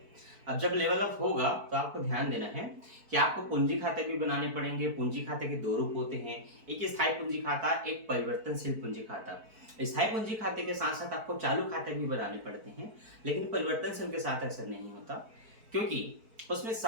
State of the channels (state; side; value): late; left; 4.5 ms